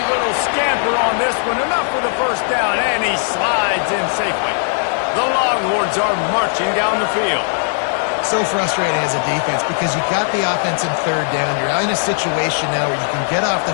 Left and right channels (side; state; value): right; silent; 68 dB below the other